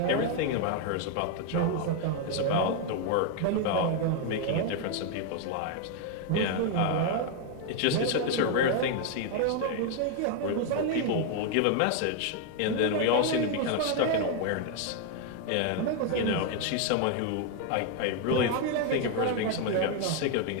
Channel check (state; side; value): different; both; correlation 0.01